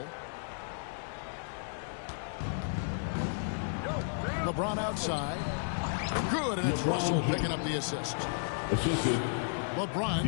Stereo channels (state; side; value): silent; right; digital silence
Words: LeBron outside. Good, and it's Russell picking up the assist.